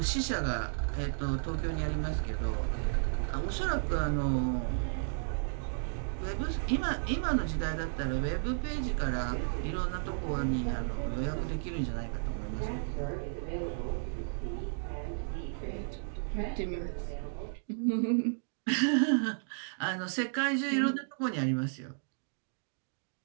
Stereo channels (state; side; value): silent; left; digital silence